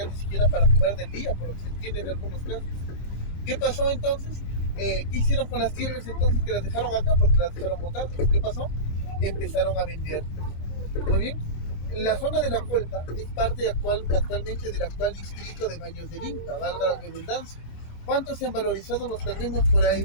ni siquiera para comer del día, por lo que se entiende en algunos casos. ¿Qué pasó entonces? ¿Qué hicieron con las tierras entonces que las dejaron acá? Porque las dejaron botadas. ¿Qué pasó? Empezaron a vender. Muy bien. La zona de la Colpa es parte actualmente del actual distrito de Baños del Inca, valga la redundancia. ¿Cuánto se han valorizado los terrenos por ahí,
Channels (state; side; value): late; right; 26 ms